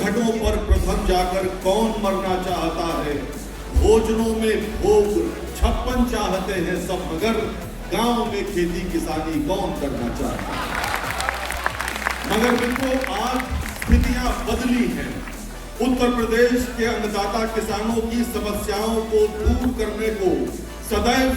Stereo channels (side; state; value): both; identical; correlation 1.00